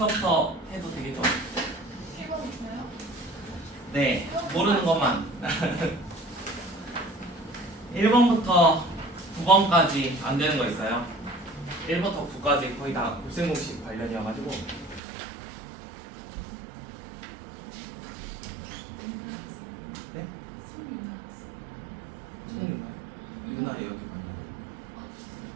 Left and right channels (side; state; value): left; drops out; at 15.0 s